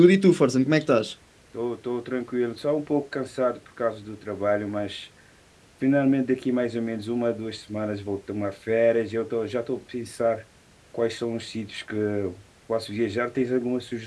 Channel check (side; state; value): both; identical; correlation 1.00